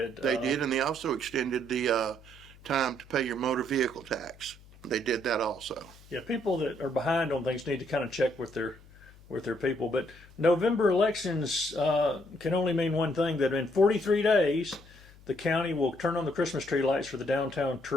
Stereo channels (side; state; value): left; noise; hum, 23 dB below the sound